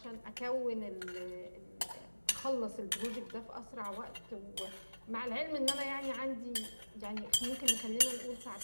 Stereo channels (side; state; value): both; inverted; correlation -1.00